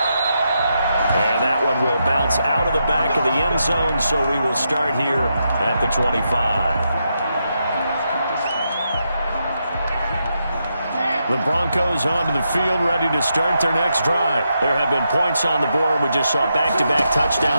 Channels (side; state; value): both; inverted; correlation -0.83